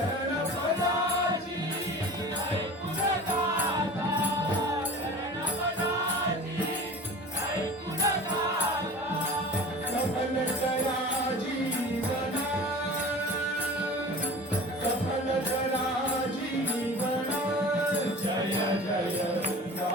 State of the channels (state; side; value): normal; both; correlation 0.39